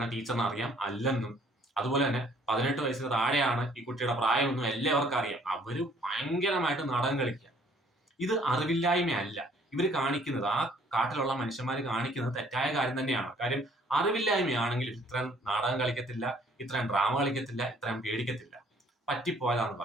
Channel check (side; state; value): both; normal; correlation 0.60